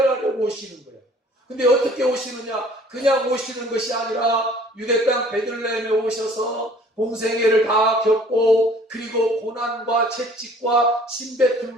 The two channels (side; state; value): both; normal; correlation 0.53